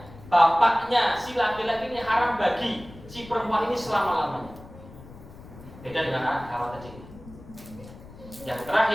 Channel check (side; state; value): left; noise; rumble, 18 dB below the sound